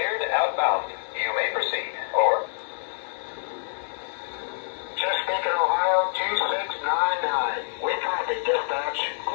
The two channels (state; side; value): silent; right; digital silence